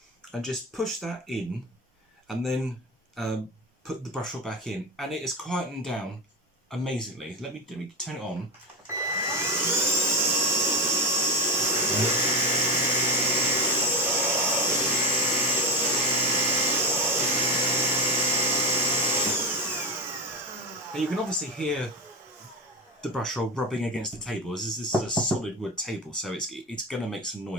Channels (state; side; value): normal; both; correlation 0.15